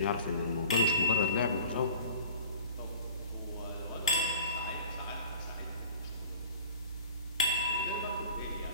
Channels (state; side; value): inverted; both; correlation -0.44